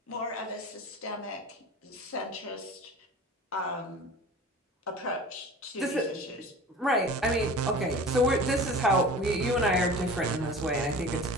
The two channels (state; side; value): normal; both; correlation 0.39